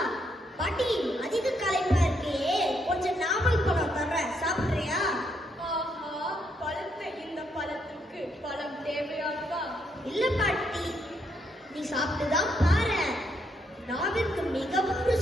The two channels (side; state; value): both; normal; correlation 0.75